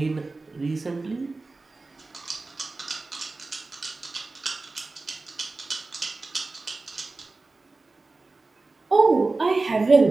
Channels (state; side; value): quieter; left; 3.5 dB